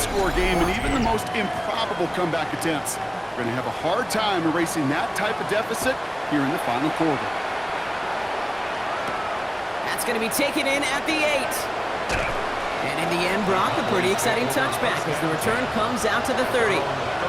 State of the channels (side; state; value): both; identical; correlation 1.00